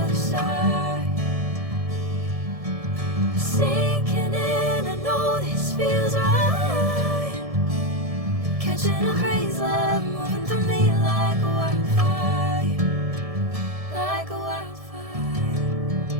other side. Sinking in, I know this feels right. Catching a crazy love, moving through me like a wildfire, like a wildfire.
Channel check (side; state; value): left; late; 1.7 ms